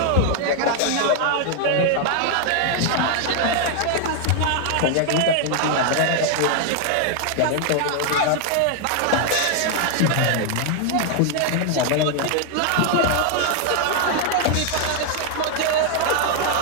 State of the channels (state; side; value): different; both; correlation 0.00